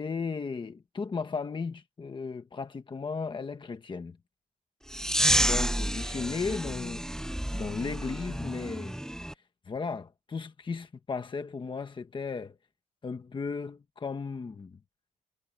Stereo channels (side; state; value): both; normal; correlation 0.69